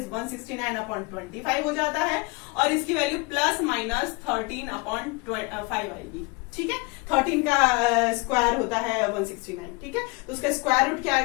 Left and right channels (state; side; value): quieter; right; 28.2 dB